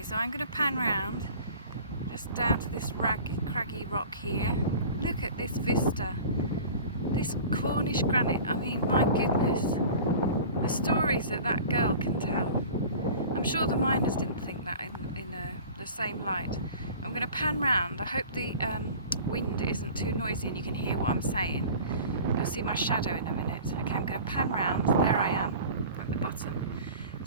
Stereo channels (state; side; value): inverted; both; correlation -0.41